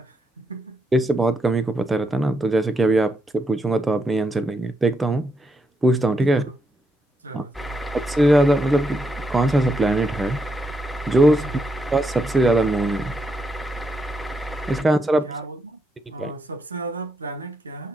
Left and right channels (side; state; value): both; normal; correlation 0.80